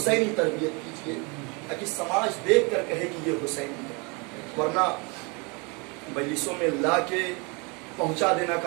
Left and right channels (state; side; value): quieter; left; 30.4 dB